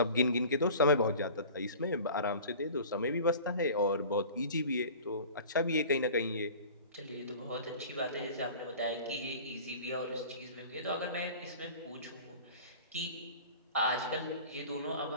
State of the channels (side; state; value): both; inverted; correlation -0.41